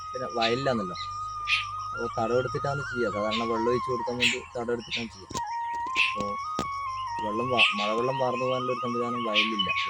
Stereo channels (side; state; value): both; identical; correlation 1.00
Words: പിന്നെ വയലിലാണല്ലോ. അപ്പോൾ തടമെടുത്തിട്ടാണ് ചെയ്യുക. സാധാരണ വെള്ളം ഒഴിച്ച് കൊടുക്കാൻ വേണ്ടി തടമെടുത്തിട്ടാണ് ചെയ്യുക. അപ്പോൾ മഴവെള്ളം വാർന്നു പോകാനുള്ള ഒരു സംവിധാനം വയലിലില്ല